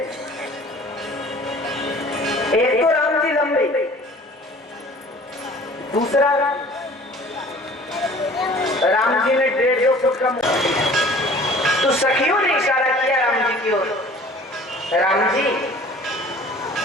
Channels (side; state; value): both; normal; correlation 0.48